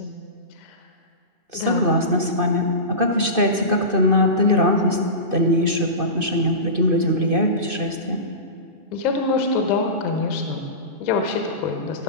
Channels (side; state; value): left; late; 2.5 ms